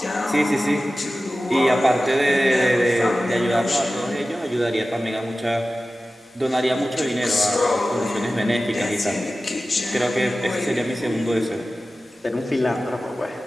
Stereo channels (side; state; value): both; normal; correlation 0.95